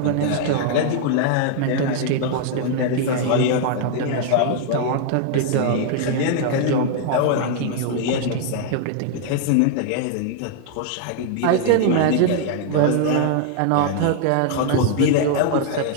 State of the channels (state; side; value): different; both; correlation 0.00